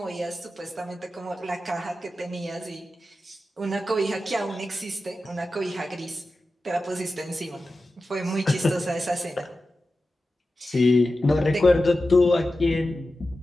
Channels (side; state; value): both; normal; correlation 0.93